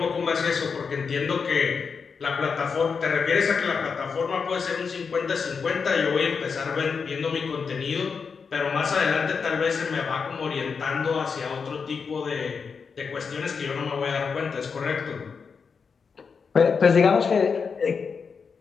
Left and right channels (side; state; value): right; quieter; 5.6 dB